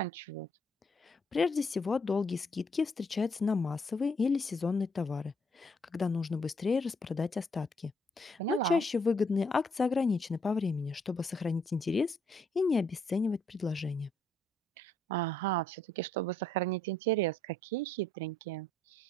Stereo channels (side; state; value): both; normal; correlation 0.69